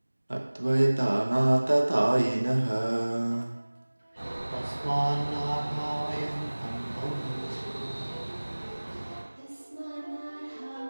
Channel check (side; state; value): both; inverted; correlation -1.00